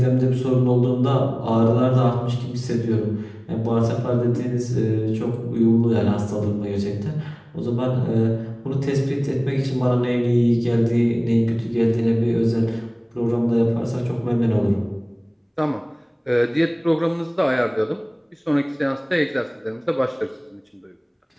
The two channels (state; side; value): identical; both; correlation 1.00